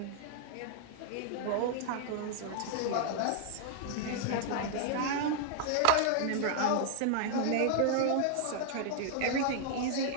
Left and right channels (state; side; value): different; both; correlation -0.01